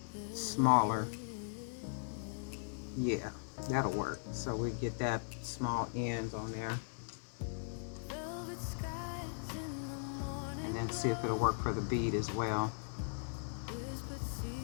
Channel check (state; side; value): silent; right; digital silence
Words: smaller. Yeah, that'll work. So we get that small end on there. And then see if it'll work for the bead as well.